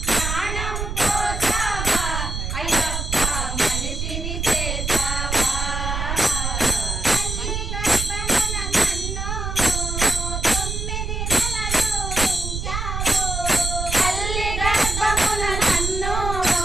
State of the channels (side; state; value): right; noise; rumble, 3 dB below the sound